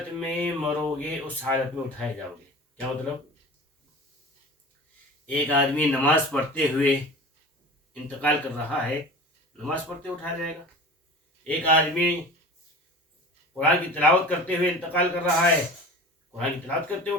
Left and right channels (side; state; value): both; normal; correlation 0.37